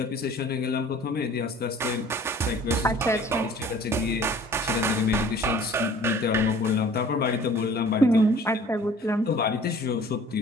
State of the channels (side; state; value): both; normal; correlation 0.50